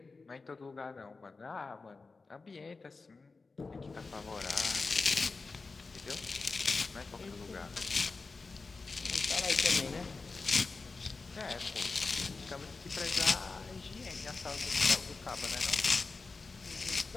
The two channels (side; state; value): right; quieter; 4.0 dB